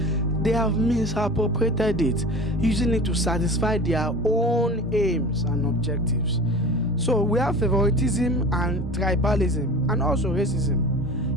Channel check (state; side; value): normal; both; correlation 0.36